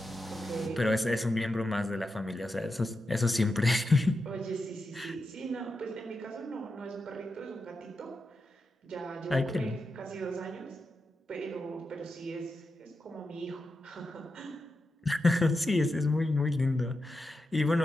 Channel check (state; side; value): normal; both; correlation 0.88